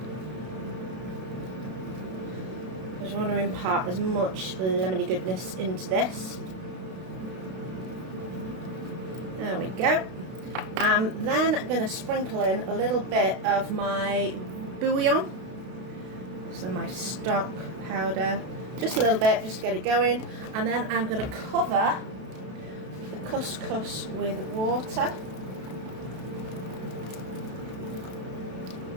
Because you want to impart as much lemony goodness into this. There we go. I'm then going to sprinkle in a little bit of my bouillon, so my stock powder, just a little bit just to get it going, and then I'm going to cover the couscous with water.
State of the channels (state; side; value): late; left; 32 ms